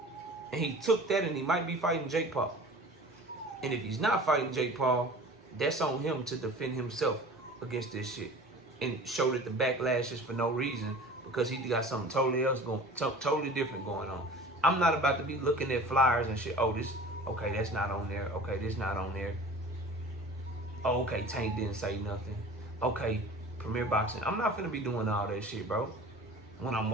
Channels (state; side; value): normal; both; correlation 0.42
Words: And he took that and he might be fighting Jake Paul. And if he's not fighting Jake Paul, that's on him to defend himself against this shit. And show that the backlash is for no reason because he got something totally else totally different going on. I'm not about to be looking at flyers and shit. Oh, this, okay, that's not on there. Okay, this not on there. Oh, okay, Tank didn't say nothing. Okay, Premier Boxing. I'm not finna be doing all that shit, bro. When I'm